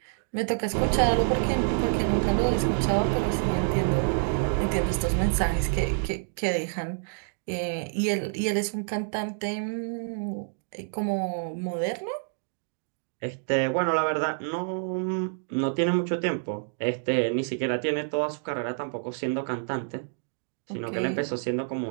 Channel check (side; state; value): left; silent; digital silence